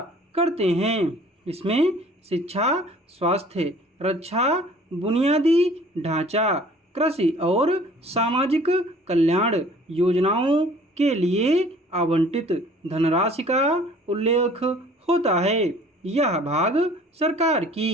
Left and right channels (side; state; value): both; normal; correlation 0.52